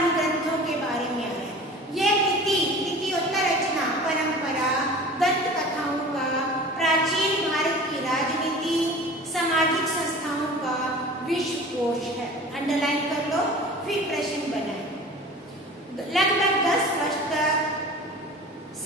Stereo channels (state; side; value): normal; both; correlation 0.40